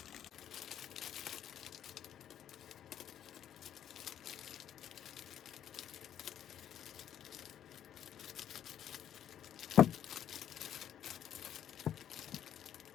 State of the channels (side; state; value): right; quieter; 10.0 dB